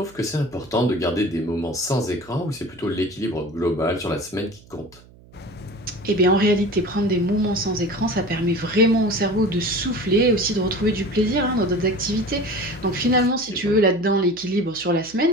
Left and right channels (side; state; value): right; noise; hum, 24 dB below the sound